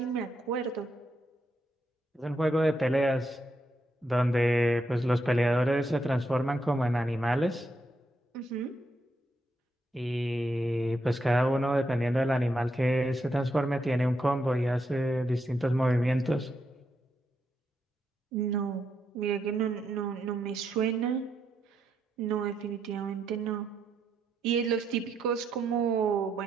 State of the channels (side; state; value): both; normal; correlation 0.80